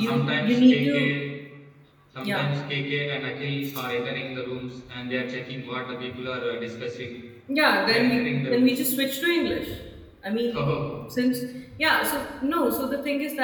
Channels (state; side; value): identical; both; correlation 1.00